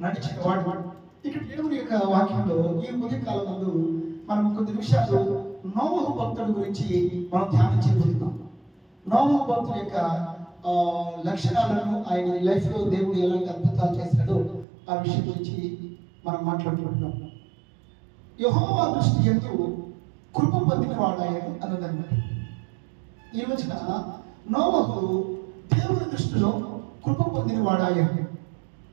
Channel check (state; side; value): drops out; left; at 14.7 s